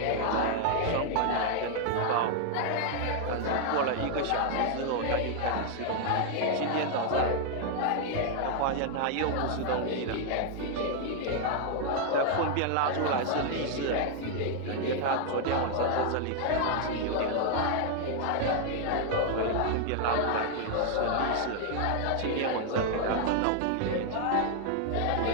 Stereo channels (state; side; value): different; both; correlation 0.00